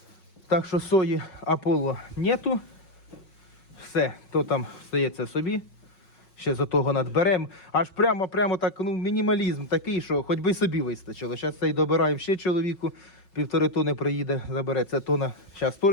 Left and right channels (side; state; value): right; late; 5.5 ms